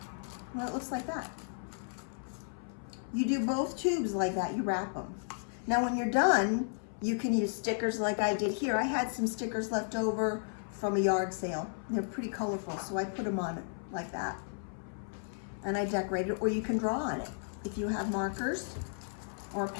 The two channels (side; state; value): right; silent; 55 dB below the other